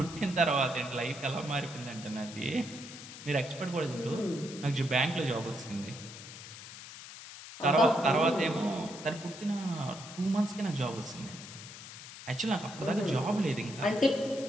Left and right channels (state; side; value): noise; left; hiss, 13 dB below the sound